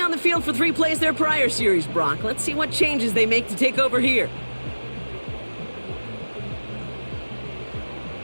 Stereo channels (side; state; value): both; inverted; correlation -1.00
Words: on the field for 3 plays their prior series, Brock. Let's see what changes they make to take over here.